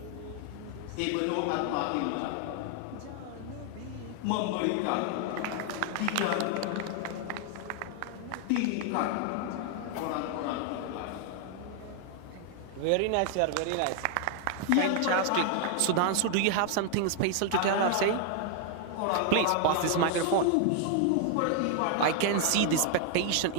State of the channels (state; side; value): different; both; correlation 0.00